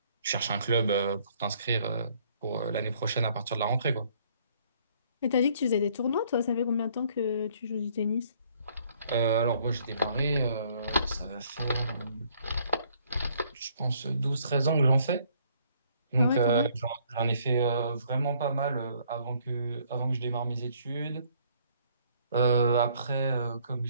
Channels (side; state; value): both; inverted; correlation -0.64